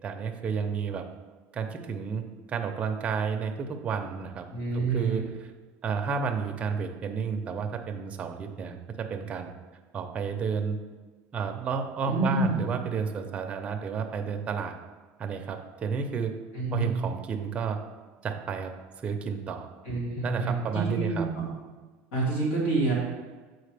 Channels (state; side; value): quieter; left; 4.5 dB